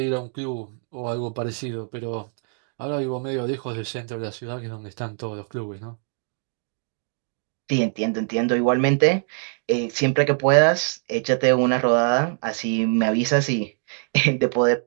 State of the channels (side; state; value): left; silent; 58 dB below the other